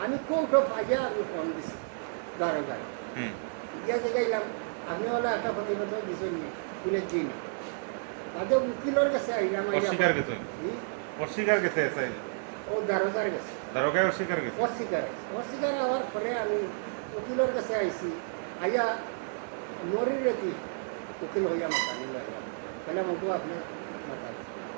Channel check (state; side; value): silent; left; digital silence